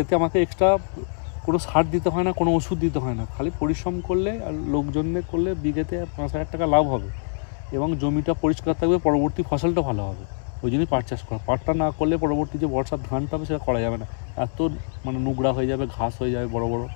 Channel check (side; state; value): right; silent; 62 dB below the other